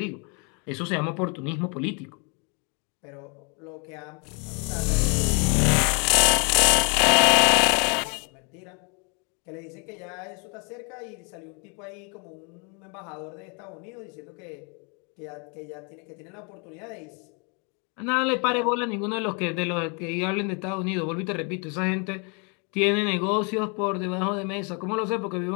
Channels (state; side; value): quieter; right; 34.7 dB